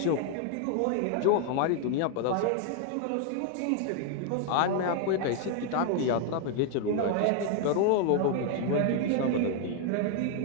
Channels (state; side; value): different; both; correlation 0.00